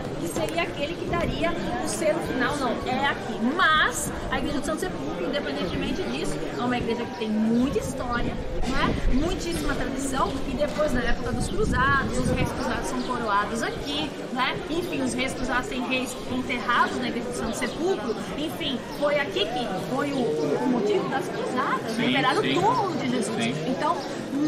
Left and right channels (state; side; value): identical; both; correlation 1.00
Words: que seria aquele que daria o selo final, não, é aqui. Mas a Igreja do Santo Sepulcro, independentemente disso, é uma igreja que tem muita história, não é? Muitíssima tradição, e depois, na época dos cruzados, os reis cruzados são coroados aqui, né? Enfim, os reis cruzados têm reis enterrados na Igreja do Santo Sepulcro, enfim, foi aqui que foi o motivo das cruzadas, né? Enterrar o túmulo de Jesus. Sim. Então,